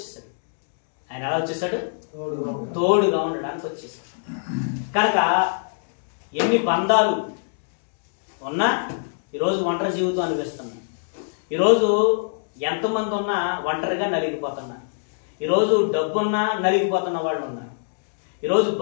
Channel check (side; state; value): right; silent; digital silence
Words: ఆయన ఎలా వచ్చేసాడు? తోడుగా ఉండడానికి వచ్చేసాడు. కనుక ఎన్ని బంధాలు ఉన్నా ఈరోజు ఒంటరి జీవితం అనిపిస్తున్నాం. ఈరోజు ఎంతమంది ఉన్నా ఒంటరిగా నలిగిపోతున్నారు. ఈరోజు డబ్బున్నా నలిగిపోతున్న వాళ్ళు ఉన్నారు. ఈరోజు